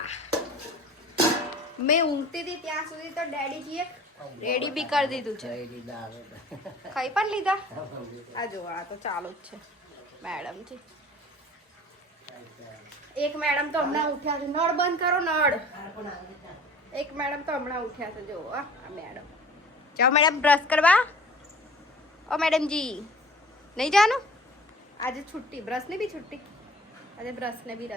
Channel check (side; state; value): both; normal; correlation 0.45